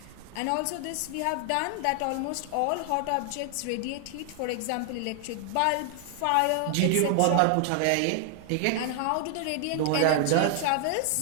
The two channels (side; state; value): both; different; correlation 0.00